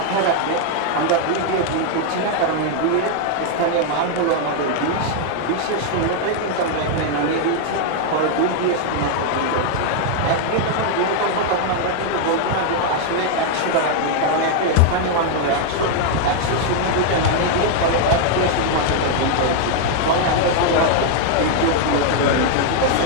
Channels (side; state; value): both; different; correlation 0.00